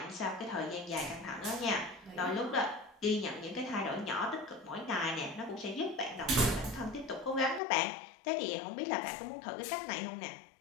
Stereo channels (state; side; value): drops out; right; at 7.6 s